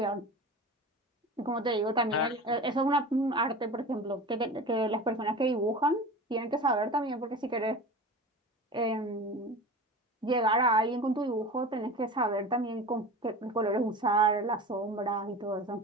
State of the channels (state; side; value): normal; both; correlation 0.34